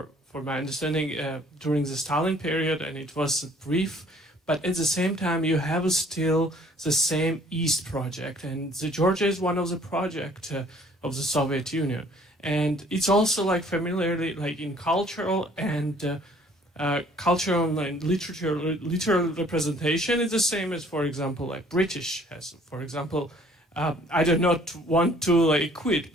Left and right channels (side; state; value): both; normal; correlation 0.57